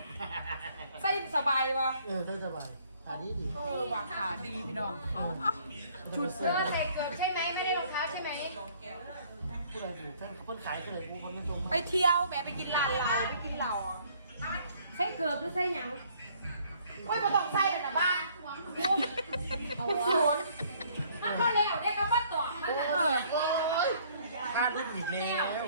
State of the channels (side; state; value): both; inverted; correlation -0.60